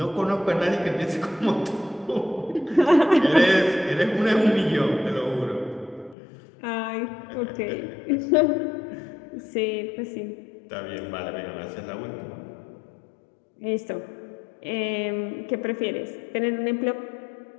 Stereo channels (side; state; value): right; drops out; at 6.2 s